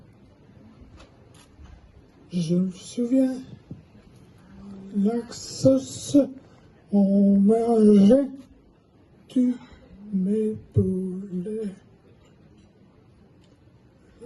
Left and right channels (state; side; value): identical; both; correlation 1.00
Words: Je me souviens, l'axos, on mangeait, tu m'épaulais.